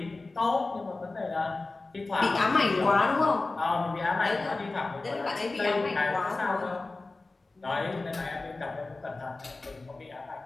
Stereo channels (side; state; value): right; quieter; 3.4 dB